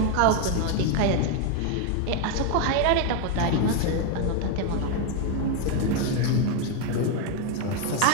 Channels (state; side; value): different; both; correlation 0.01